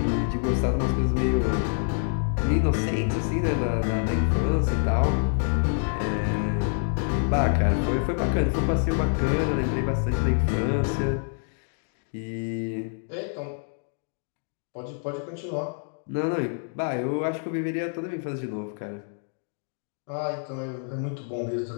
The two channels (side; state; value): right; silent; 60 dB below the other